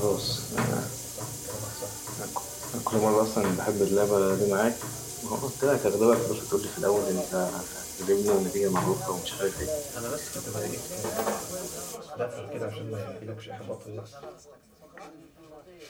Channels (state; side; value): identical; both; correlation 1.00